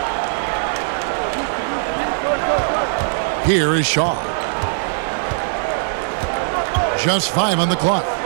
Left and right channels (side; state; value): left; silent; digital silence